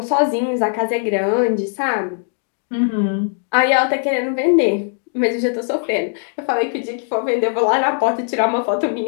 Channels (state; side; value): silent; right; 66 dB below the other